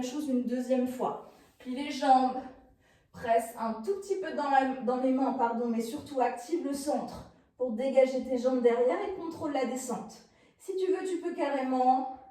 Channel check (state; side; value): identical; both; correlation 1.00